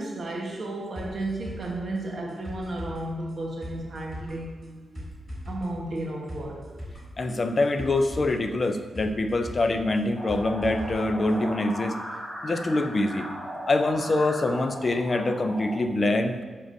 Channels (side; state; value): both; normal; correlation 0.89